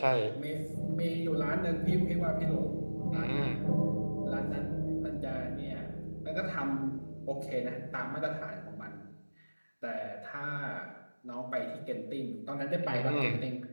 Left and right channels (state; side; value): inverted; both; correlation -1.00